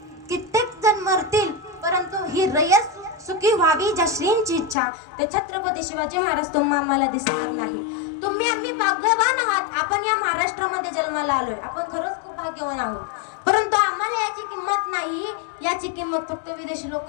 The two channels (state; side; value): drops out; right; at 4.8 s